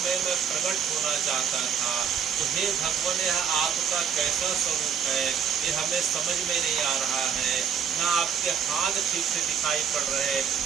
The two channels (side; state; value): left; quieter; 7.5 dB